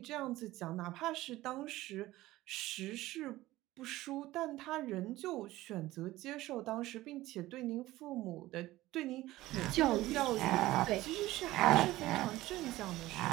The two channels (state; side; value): quieter; left; 17.0 dB